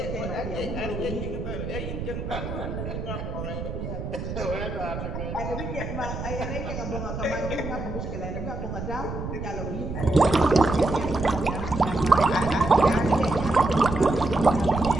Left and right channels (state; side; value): noise; right; rumble, 6 dB below the sound